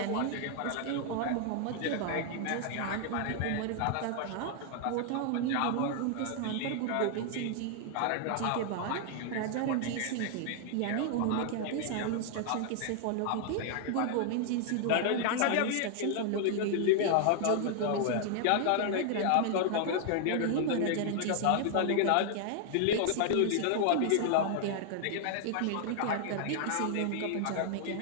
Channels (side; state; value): both; different; correlation 0.00